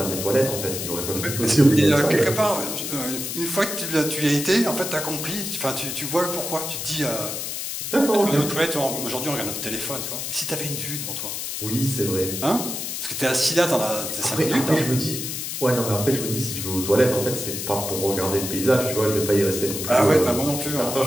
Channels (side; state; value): left; noise; hiss, 5 dB below the sound